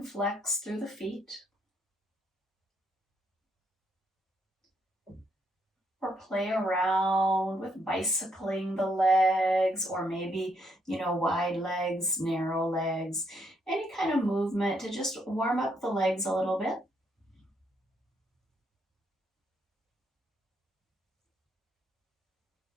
flex through the feet. Or play around with bicycling the legs, or maybe, wide legs, narrow legs, any kind of movement to just warm up the legs a little bit.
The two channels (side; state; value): both; normal; correlation 0.74